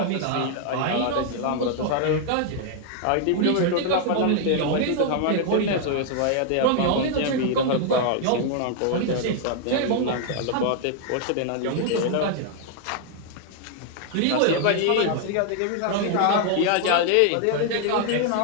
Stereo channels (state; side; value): different; both; correlation 0.00